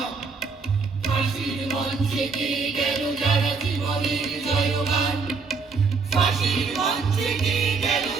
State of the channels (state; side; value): quieter; left; 4.7 dB